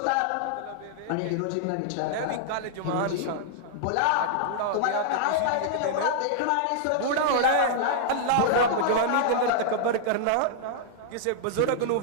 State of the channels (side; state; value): both; different; correlation -0.01